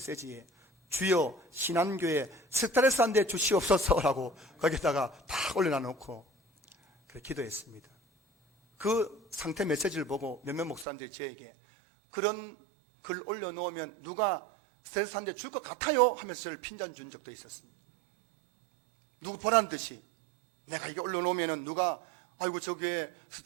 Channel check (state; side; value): drops out; left; at 10.9 s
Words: 주여 신한교회 스트레스 한 대 주시옵소서라고 거기다가 다 올려놔 놓고 그렇게 기도했습니다. 그 상태 메시지를 보고 몇몇 목사님들이 저에게 그런 글 올려놓으면 누가 스트레스 한 대 줄 것 같아요 하면서 저를 핀잔 준 적도 있었습니다. 누구 보란 듯이 내가 이게 올려놓으면 누가 아이고 저 교회